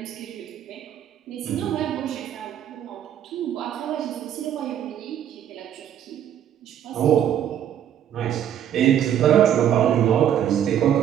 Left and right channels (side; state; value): left; quieter; 10.1 dB